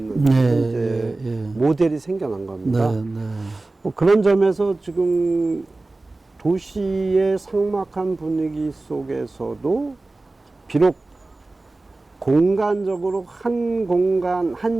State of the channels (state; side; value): quieter; left; 3.1 dB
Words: 이제 모델이 생겨난 겁니다. 뭐 그런 점에서 지금 도시의 삭막한 분위기 속에서도 비록 공간적으로 한 공간,